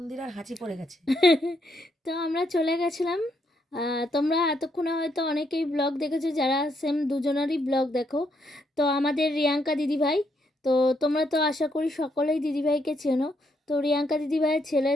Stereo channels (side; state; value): both; normal; correlation 0.76